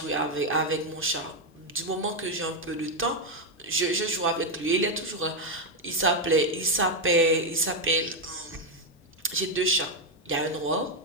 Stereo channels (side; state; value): both; normal; correlation 0.04